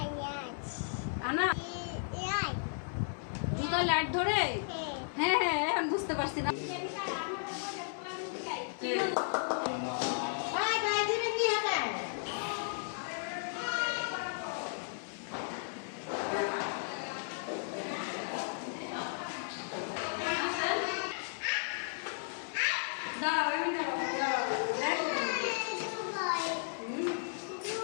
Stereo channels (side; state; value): right; silent; 55 dB below the other